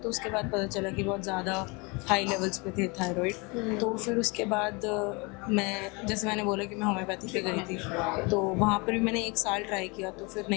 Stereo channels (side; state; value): right; quieter; 28.6 dB